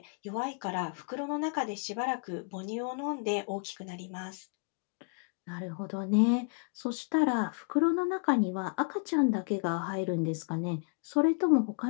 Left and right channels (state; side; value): quieter; right; 37.8 dB